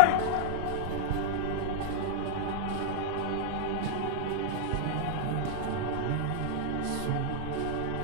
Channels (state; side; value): different; both; correlation -0.01